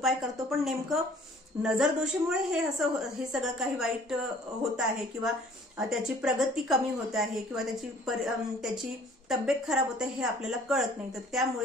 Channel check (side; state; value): both; normal; correlation 0.54